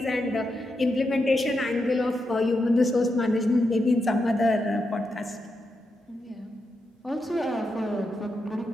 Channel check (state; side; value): normal; both; correlation 0.85